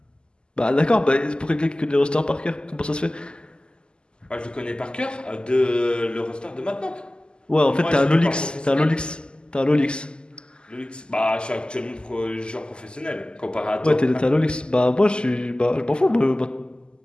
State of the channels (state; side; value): late; right; 0.048 ms